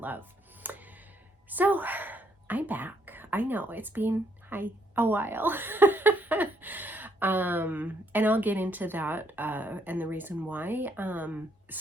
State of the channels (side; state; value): both; normal; correlation 0.70